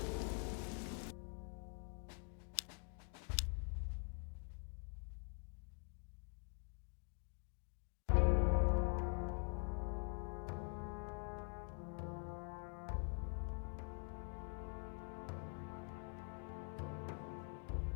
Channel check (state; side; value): quieter; right; 39.3 dB